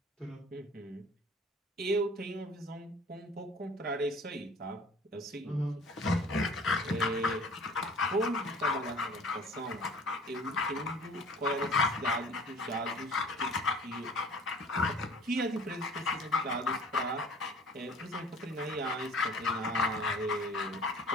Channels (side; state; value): both; normal; correlation 0.47